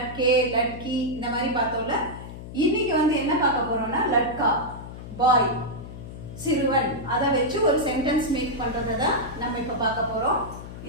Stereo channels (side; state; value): left; noise; hum, 12 dB below the sound